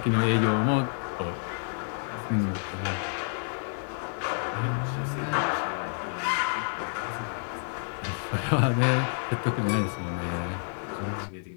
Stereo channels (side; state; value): right; silent; digital silence